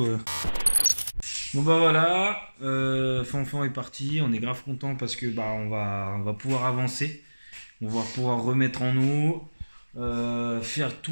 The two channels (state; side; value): inverted; both; correlation -1.00